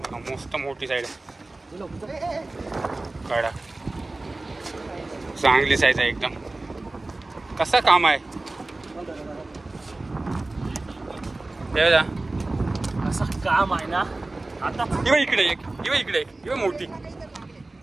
मस्त मोठी साईड आहे. काढा, चांगली साईज आहे एकदम. कसं काम आहे असं काम आहे ना. आता इकडे एक मोठी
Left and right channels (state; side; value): quieter; left; 3.0 dB